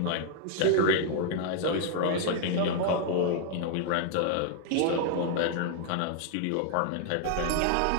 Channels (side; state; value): both; different; correlation 0.00